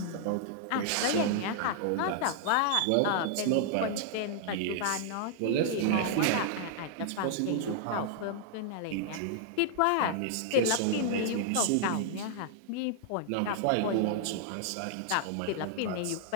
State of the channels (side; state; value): both; different; correlation -0.01